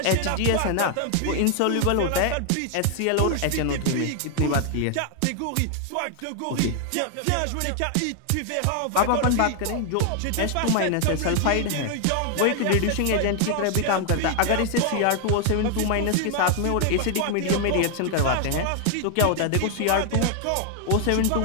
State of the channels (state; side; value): different; both; correlation 0.00